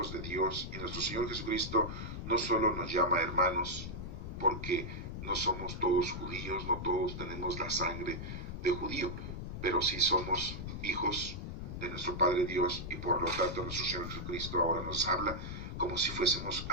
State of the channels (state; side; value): noise; left; rumble, 6 dB below the sound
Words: de Dios y nuestro Señor Jesucristo no solo nos llama hermanos, porque no somos todos judíos, no todos tenemos la sangre de judío, pero sí somos hijos de nuestro Padre Dios y por lo tanto nuestro Señor Jesucristo ahora nos habla como si fuésemos